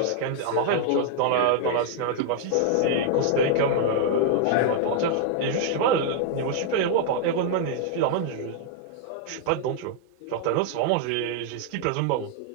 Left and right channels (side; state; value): both; different; correlation -0.01